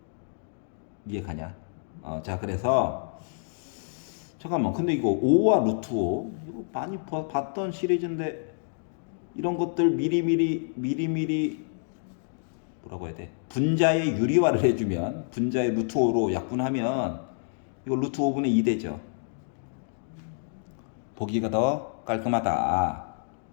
이해 가냐? 자, 그래서 잠깐만, 근데 이거 5와 루트 5 이거 많이 봤던 시리즈인데 이런 것들 미리미리 뭐라고 해야 돼? 분자의 유리화를 해주면 분자의 루트 5로 약분하면 이거 루트 5분의 2 되죠. 보기가 더 깔끔하다.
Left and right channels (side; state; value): right; silent; digital silence